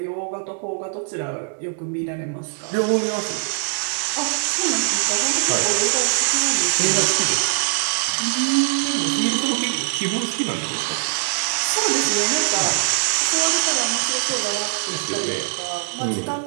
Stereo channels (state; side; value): silent; left; digital silence